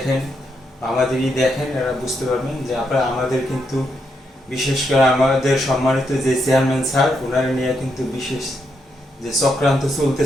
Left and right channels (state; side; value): normal; both; correlation 0.80